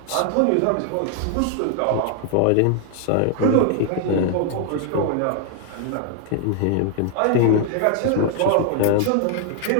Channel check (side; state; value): both; different; correlation 0.00